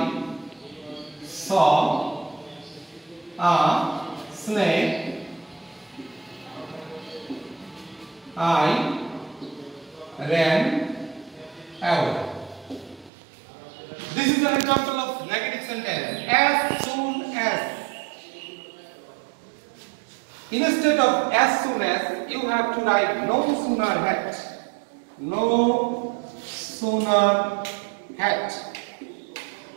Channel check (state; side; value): drops out; left; at 13.1 s